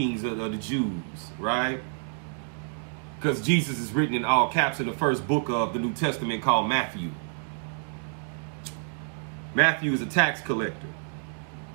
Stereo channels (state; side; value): silent; left; 59 dB below the other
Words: of the Jews, right? Because Jesus is written in all caps in the first book of the New Testament called Matthew. Matthew is a tax collector.